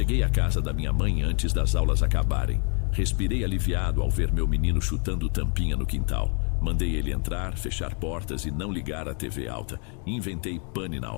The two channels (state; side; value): quieter; right; 39.0 dB